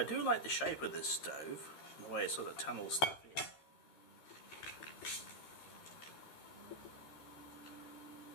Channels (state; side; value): late; right; 13 ms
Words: do like the shape of this stove, the way it sort of tunnels stuff in.